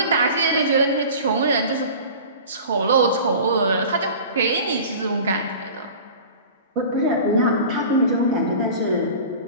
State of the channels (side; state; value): both; inverted; correlation -0.38